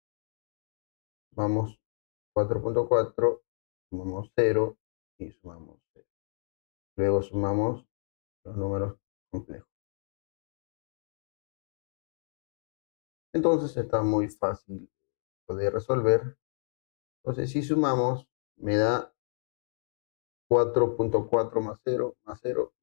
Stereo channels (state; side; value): silent; right; digital silence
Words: Sumamos 4.4, sumamos 0 y sumamos 0. Luego sumamos los números complejos. Entonces está muy fácil poder resolver. Entonces si sumamos me da 4.4 más 0